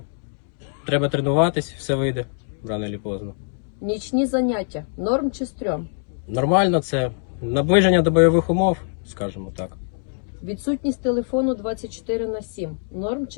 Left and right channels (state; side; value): silent; right; digital silence